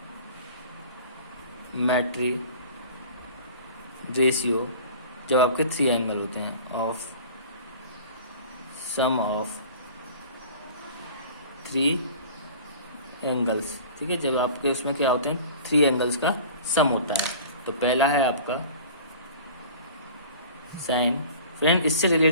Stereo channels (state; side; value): inverted; both; correlation -0.42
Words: रेशियो जब आपके 3 एंगल होते हैं ऑफ सम ऑफ 3 एंगल्स, ठीक है। जब आपके उसमें क्या होते हैं, 3 एंगल्स का सम होता है। तो पहला है आपका साइन। फ्रेंड इससे